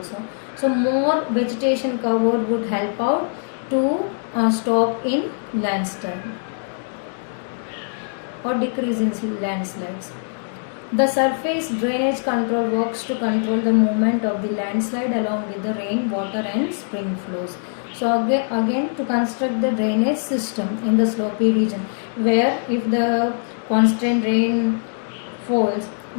So more vegetation cover would help out to stop in landslide or decrease in landslides. The surface drainage control works to control the movement of the landslide along with the rain, water and spring flows. So again to construct the drainage system in the slopy region, where if the constant rain falls,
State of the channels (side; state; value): right; silent; digital silence